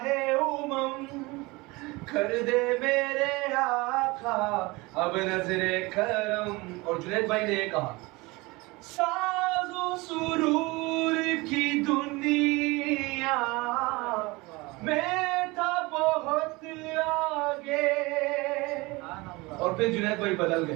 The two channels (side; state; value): left; quieter; 23.6 dB